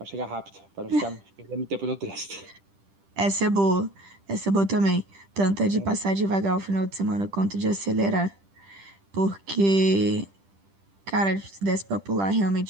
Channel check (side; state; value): left; late; 10 ms